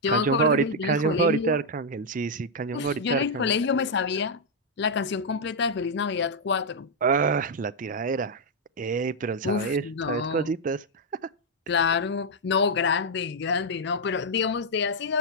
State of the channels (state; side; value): normal; both; correlation -0.03